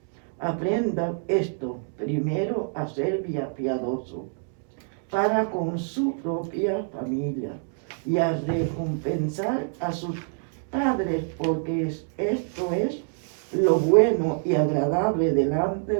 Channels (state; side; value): silent; left; 61 dB below the other